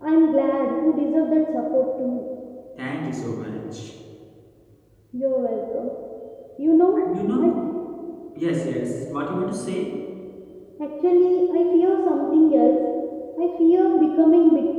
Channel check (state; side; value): identical; both; correlation 1.00